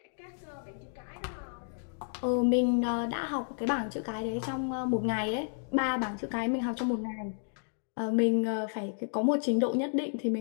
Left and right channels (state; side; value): silent; right; digital silence